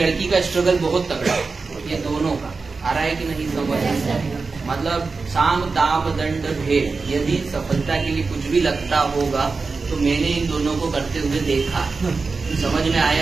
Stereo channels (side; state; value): left; quieter; 4.3 dB